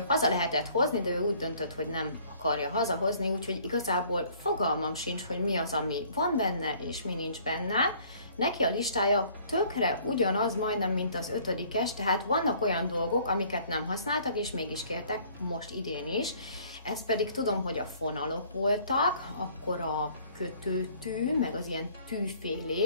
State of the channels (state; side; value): inverted; both; correlation -0.57